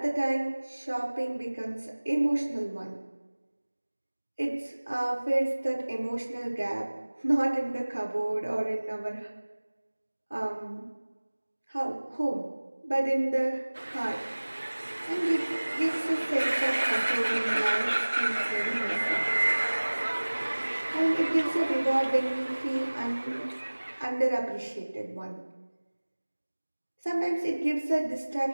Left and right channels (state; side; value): inverted; both; correlation -1.00